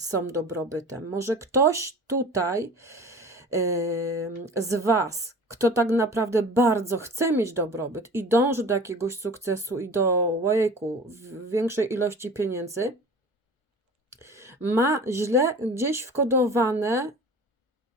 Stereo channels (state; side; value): normal; both; correlation 0.40